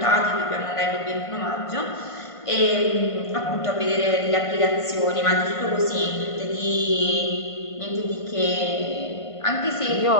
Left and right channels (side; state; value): right; late; 1.5 ms